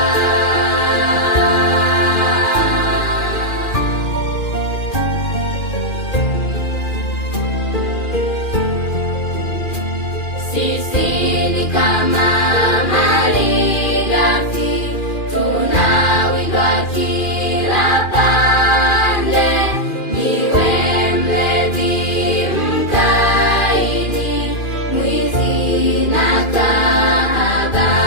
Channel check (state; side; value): late; right; 2.4 ms